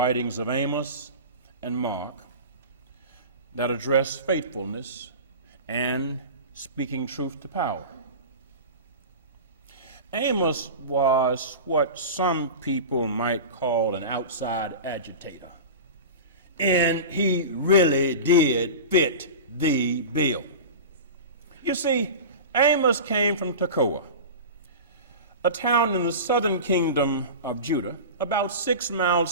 of Amos and Mark that address faithfulness and speaking truth to power. Amos was what some people might call an outside agitator, and he really did fit the bill. You see, Amos came from Tekoa, a town in the southern kingdom of Judah, about 6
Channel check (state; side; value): inverted; both; correlation -0.30